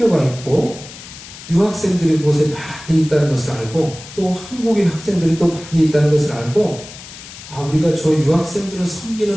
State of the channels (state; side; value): noise; left; hiss, 16 dB below the sound